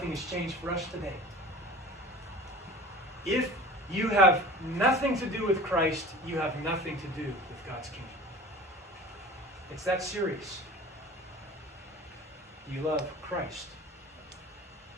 has changed for us today. If you have nothing to do with Christ, you have nothing to do with God's kingdom. It's that serious. You love Christ.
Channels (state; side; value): normal; both; correlation 0.40